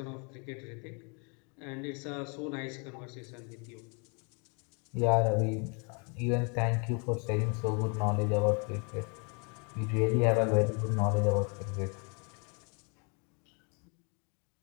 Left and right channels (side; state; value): right; quieter; 35.2 dB